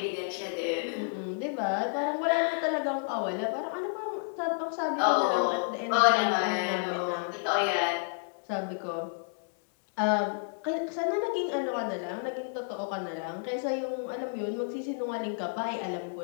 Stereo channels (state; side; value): silent; right; digital silence